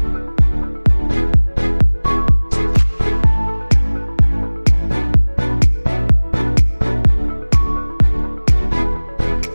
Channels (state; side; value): inverted; both; correlation -1.00